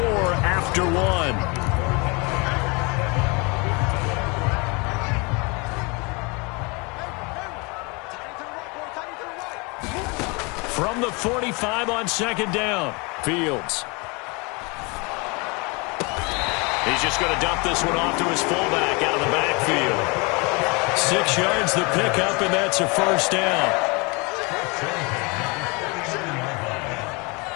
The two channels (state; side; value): quieter; right; 29.0 dB